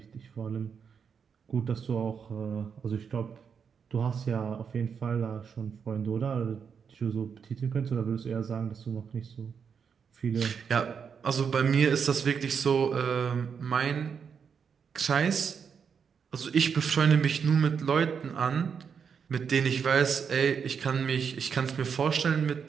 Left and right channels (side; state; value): left; quieter; 6.6 dB